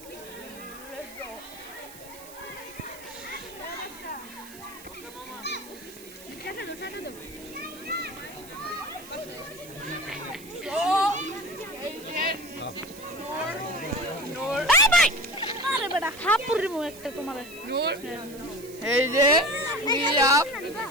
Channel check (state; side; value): noise; right; hiss, 17 dB below the sound